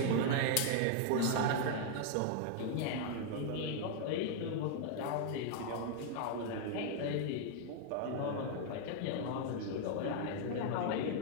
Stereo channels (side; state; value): both; different; correlation 0.00